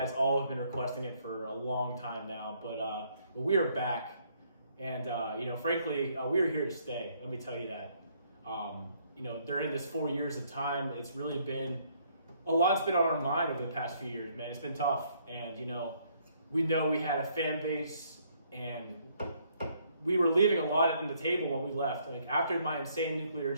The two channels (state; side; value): inverted; both; correlation -0.68